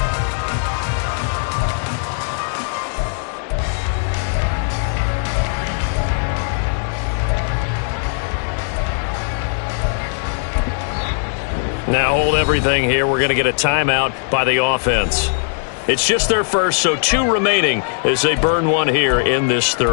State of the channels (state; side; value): silent; right; digital silence